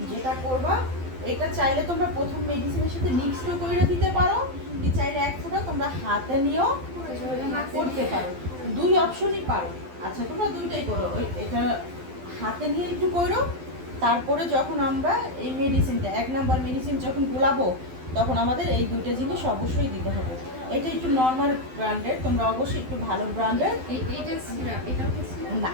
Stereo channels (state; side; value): late; left; 12 ms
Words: যেটা করবা, এটা চাইলে তোমরা প্রথম মেডিসিনের সাথে মিক্সড করে দিতে পারো, কি চাইলে এক ফোঁটা তোমরা হাতে নিয়েও করতে পারো, দুই অপশনই পারো। আচ্ছা তোমরা দুইটাই করো, এটা হাতে নিয়ে একটু করো, তারপরে যখন আমরা এই মেডিসিনটা 1 নাম্বার মেডিসিন যখন গোলাবো তখন আমাদের এই দুইটা জিনিস অবশ্যই দিতে হবে। এটা একটু নর্মাল ব্র্যান্ডের, তোমরা অবশ্যই একটু ভালো ব্র্যান্ডের। এইটা সিরাপ, এটাও কি সিরাপ? না